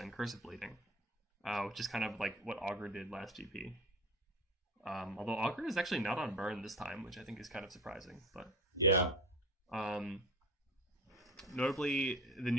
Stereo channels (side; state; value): both; normal; correlation 0.36